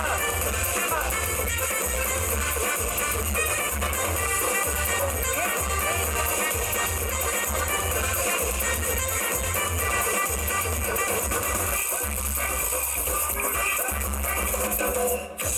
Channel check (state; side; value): identical; both; correlation 1.00